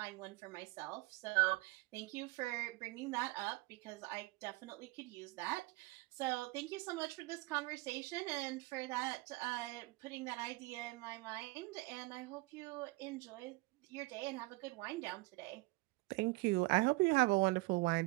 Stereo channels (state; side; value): quieter; left; 23.7 dB